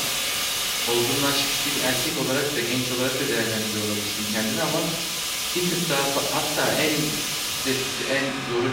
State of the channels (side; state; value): both; identical; correlation 1.00